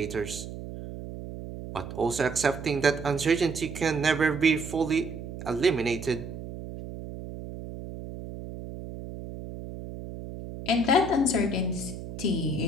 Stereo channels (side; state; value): right; noise; hum, 10 dB below the sound